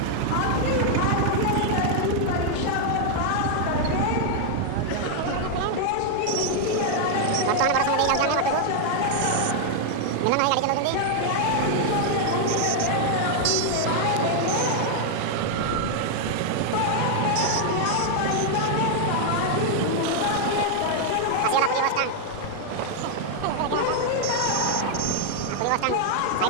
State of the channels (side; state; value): both; different; correlation 0.00